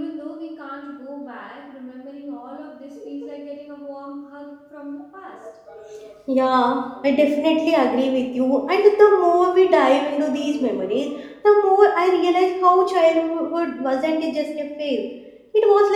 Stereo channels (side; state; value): both; identical; correlation 1.00